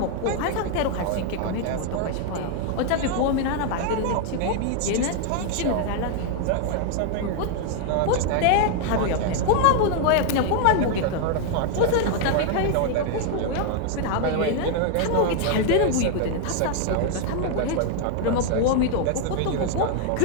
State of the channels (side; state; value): both; different; correlation 0.00